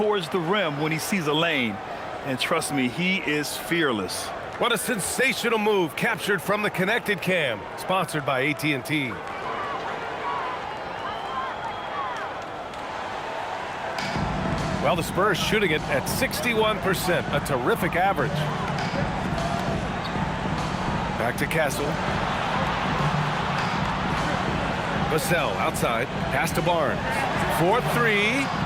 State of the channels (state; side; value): identical; both; correlation 1.00